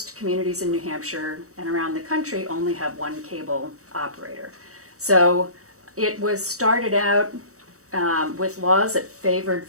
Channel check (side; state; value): left; late; 0.65 ms